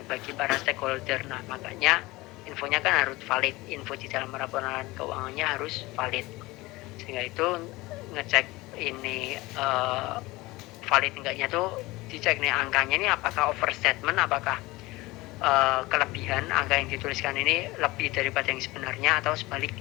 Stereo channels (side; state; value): right; quieter; 20.9 dB